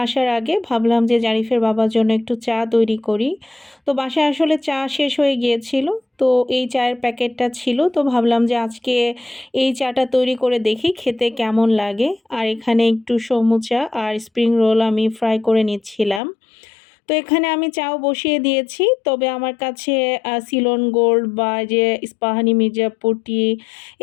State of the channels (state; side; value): drops out; right; at 16.2 s